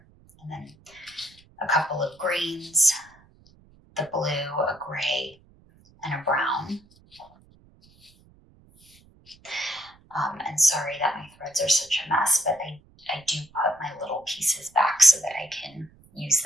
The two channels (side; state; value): right; noise; rumble, 28 dB below the sound